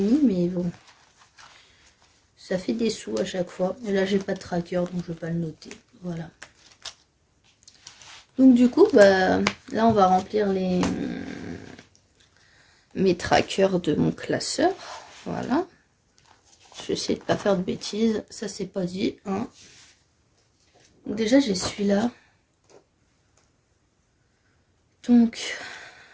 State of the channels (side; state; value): both; identical; correlation 1.00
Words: mais bon, ça fait des sous à chaque fois. Et là, j'ai pas de tracker, donc je ne vais pas le noter. Voilà. Donc du coup, bah, là, on va remplir mes trackers de mon classeur. Voilà. Je vais essayer de ne pas faire de bêtises. Ça, c'est pas dit. Hein. Donc déjà, j'ai celui-là. Donc,